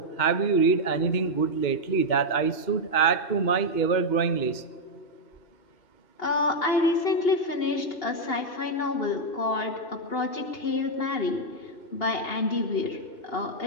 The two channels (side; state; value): right; late; 2.8 ms